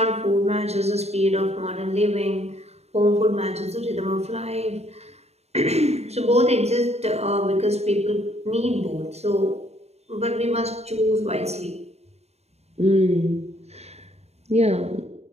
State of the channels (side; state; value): left; late; 0.31 ms